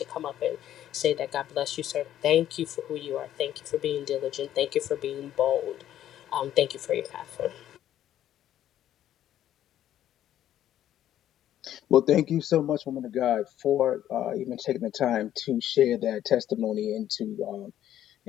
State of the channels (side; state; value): right; quieter; 11.6 dB